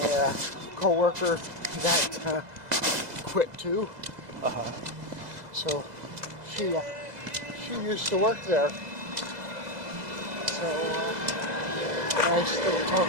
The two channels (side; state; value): left; late; 2.0 ms